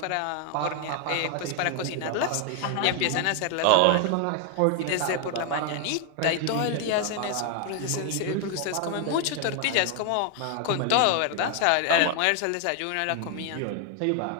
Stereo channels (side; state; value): both; different; correlation 0.00